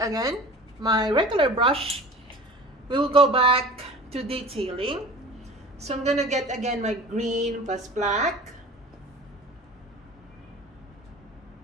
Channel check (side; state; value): both; normal; correlation 0.40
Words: again, my regular brush. We will go back to detailing. So I'm gonna get again my green plus black.